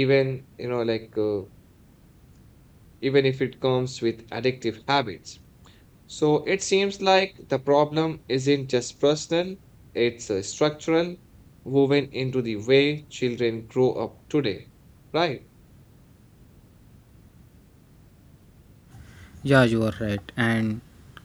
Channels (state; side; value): identical; both; correlation 1.00